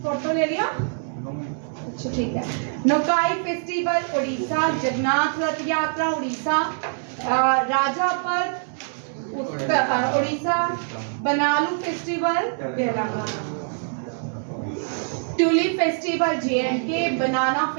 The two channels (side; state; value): left; silent; 63 dB below the other